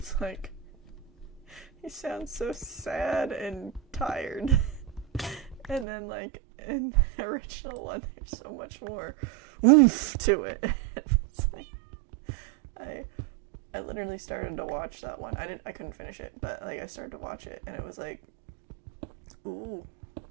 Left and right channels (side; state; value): left; drops out; at 5.9 s